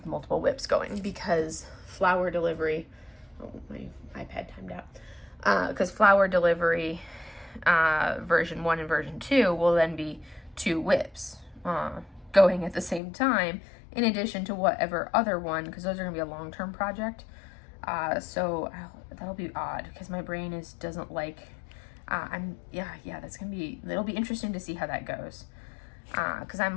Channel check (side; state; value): right; drops out; at 13.0 s